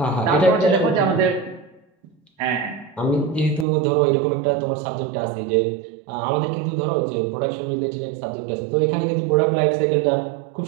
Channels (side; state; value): left; drops out; at 3.7 s